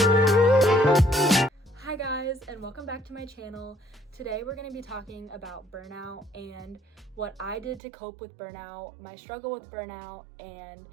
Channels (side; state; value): left; drops out; at 7.8 s